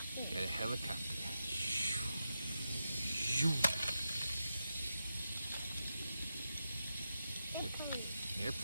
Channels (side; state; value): both; inverted; correlation -0.88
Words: Got a helicopter. Airplane.